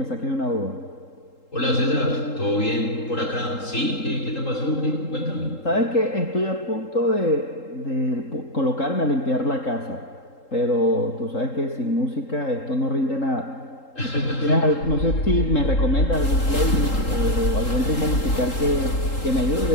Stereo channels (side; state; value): right; late; 3.8 ms